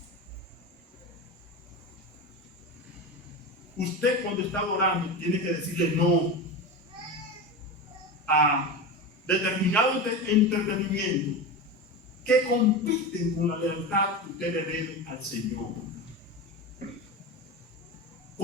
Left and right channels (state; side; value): normal; both; correlation 0.23